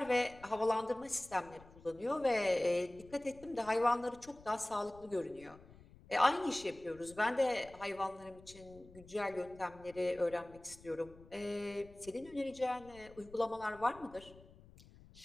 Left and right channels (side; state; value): left; noise; rumble, 22 dB below the sound